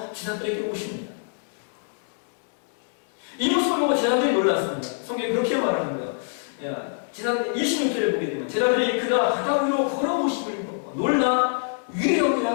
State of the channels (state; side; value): silent; right; digital silence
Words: 제자들에게 오십니다. 이 모습을 보고 제자들이 놀랐습니다. 성경이 그렇게 말하는 거예요. 제자들 26절을 보게 되면 제자들이 그가 바다 위로 걸어오심을 보고 놀라